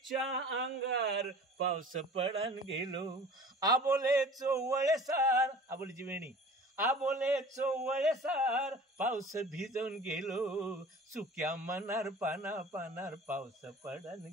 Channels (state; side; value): normal; both; correlation 0.43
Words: अंगार पाऊस पडान गेलो. आबोले चोवळेसार, आबोलीची वेणी, आबोले चोवळेसार पाऊस भिजून गेलो. सुक्या मनार पाना पानार पाऊस पडन